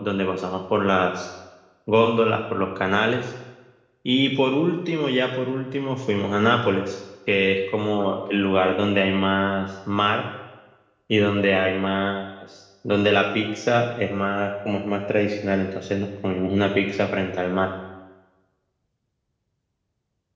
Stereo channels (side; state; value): both; identical; correlation 1.00